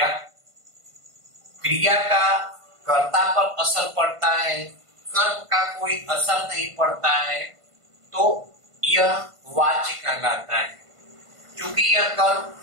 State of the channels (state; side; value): late; left; 1.5 ms